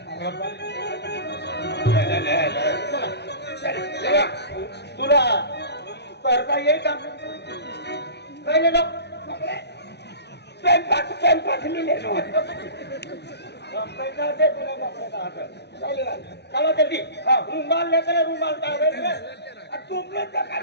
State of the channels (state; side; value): late; right; 0.49 ms